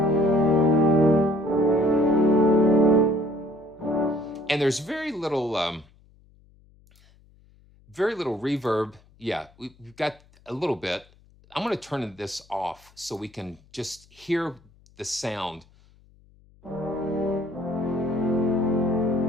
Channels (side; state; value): left; noise; hum, 29 dB below the sound